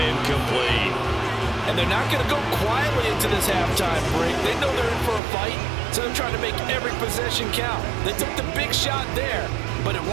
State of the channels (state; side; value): drops out; left; at 5.2 s